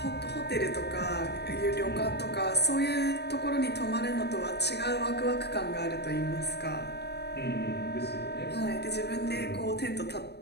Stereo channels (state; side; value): late; right; 0.48 ms